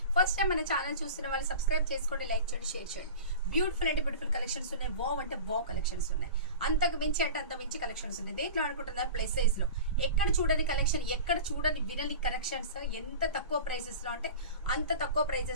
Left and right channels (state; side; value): inverted; both; correlation -0.34